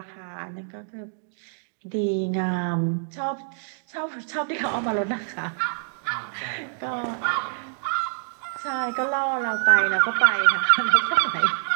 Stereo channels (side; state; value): left; silent; digital silence